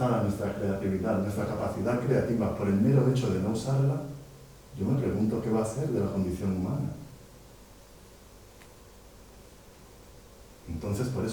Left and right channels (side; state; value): both; identical; correlation 1.00